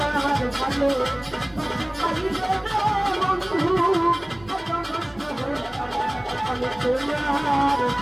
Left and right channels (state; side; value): noise; right; rumble, 25 dB below the sound